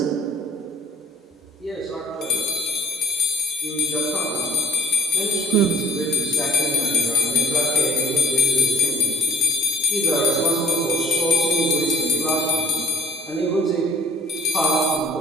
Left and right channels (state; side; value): normal; both; correlation 0.54